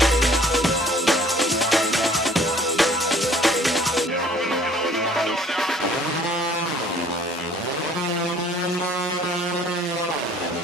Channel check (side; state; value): both; normal; correlation 0.55